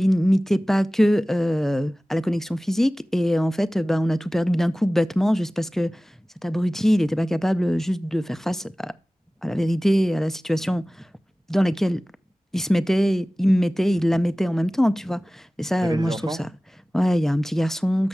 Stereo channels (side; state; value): both; normal; correlation 0.98